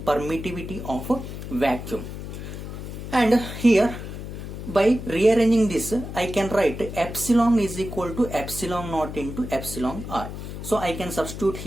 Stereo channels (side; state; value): left; noise; hum, 9 dB below the sound